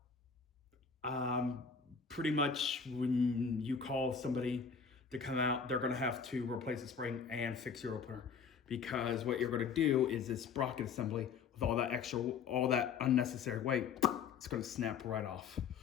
pretty much when you call somebody to come out, they're going to have to replace the spring and fix your opener, because what you're going to do is this sprocket assembly with all that unnecessary weight, it's going to snap right off.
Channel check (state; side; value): quieter; right; 6.1 dB